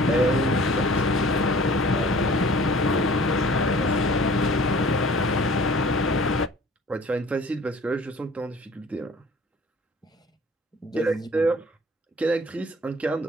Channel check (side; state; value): both; normal; correlation 0.50